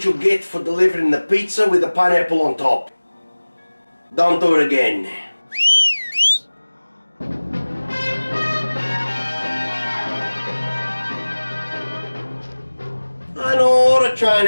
what you get for delivering the pizza with the pineapple on top. Don't do it again. I know the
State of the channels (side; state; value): both; inverted; correlation -1.00